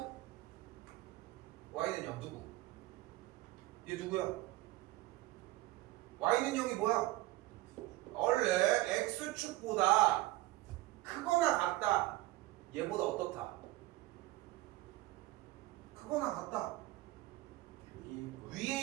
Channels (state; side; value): quieter; left; 18.2 dB